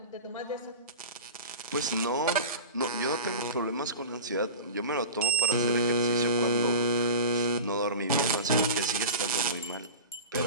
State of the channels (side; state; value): both; inverted; correlation -0.32